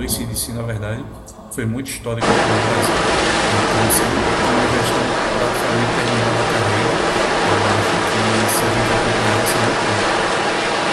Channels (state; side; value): identical; both; correlation 1.00